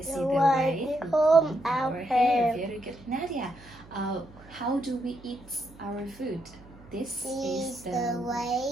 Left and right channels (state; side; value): noise; right; hum, 22 dB below the sound